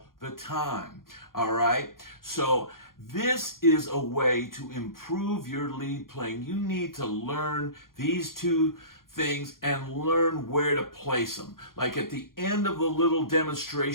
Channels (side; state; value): right; late; 0.91 ms